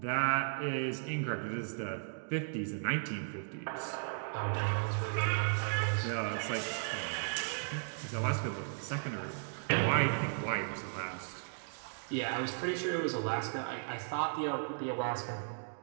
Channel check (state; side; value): silent; left; digital silence